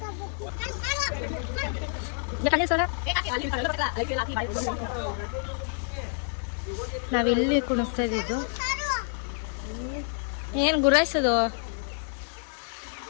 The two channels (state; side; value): silent; right; 59 dB below the other